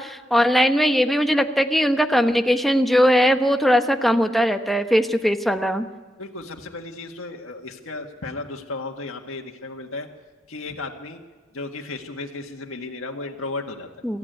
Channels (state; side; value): normal; both; correlation 0.85